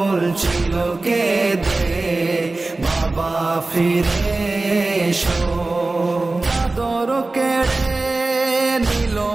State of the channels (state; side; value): quieter; left; 3.2 dB